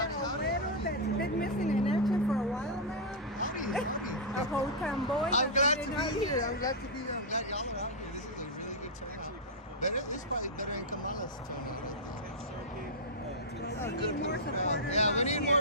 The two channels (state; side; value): normal; both; correlation -0.08